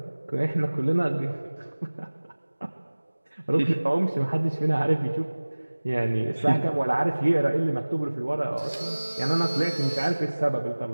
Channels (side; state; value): both; inverted; correlation -1.00